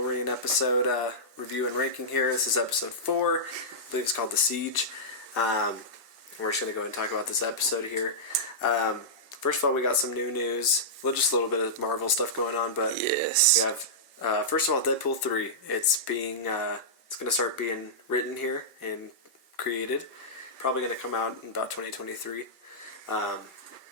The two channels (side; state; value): both; normal; correlation -0.13